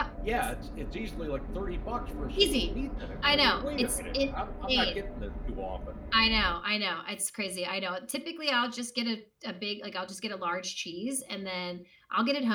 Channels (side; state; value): both; identical; correlation 1.00